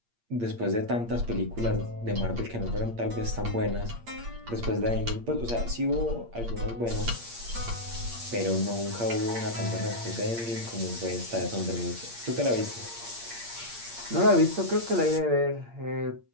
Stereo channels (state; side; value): late; left; 8.6 ms